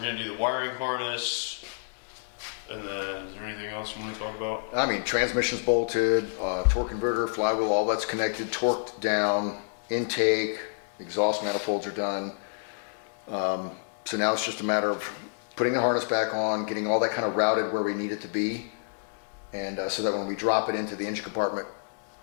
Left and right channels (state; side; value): silent; right; digital silence